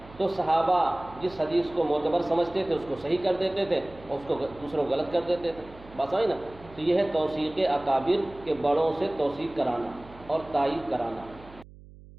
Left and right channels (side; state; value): right; noise; hum, 20 dB below the sound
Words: تو صحابہ جس حدیث کو معتبر سمجھتے تھے اس کو صحیح کر دیتے تھے اور اس کو دوسروں غلط کر دیتے تھے۔ بات سمجھ نا؟ تو یہ ہے توثیق اکابر کے بڑوں سے توثیق کرانا اور تائید کرانا۔